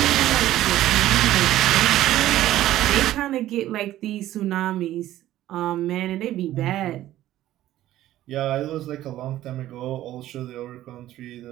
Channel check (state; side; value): quieter; left; 14.0 dB